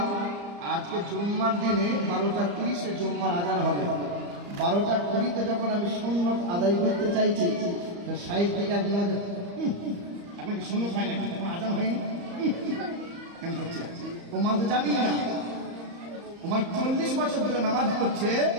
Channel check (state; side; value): late; left; 34 ms